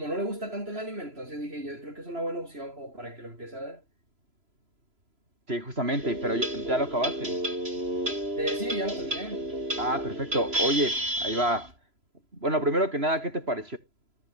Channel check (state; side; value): late; left; 3.0 ms